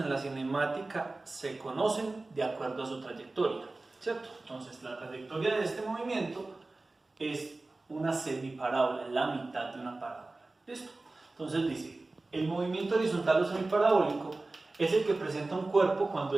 la cinemática se conocen de acuerdo a su trayectoria, ¿cierto? Entonces, la trayectoria de este movimiento es una semiparábola, es la mitad de una parábola. ¿Listo? Entonces dice, el movimiento horizontal o semiparabólico es el que presenta un cuerpo cuando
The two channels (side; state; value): left; quieter; 3.2 dB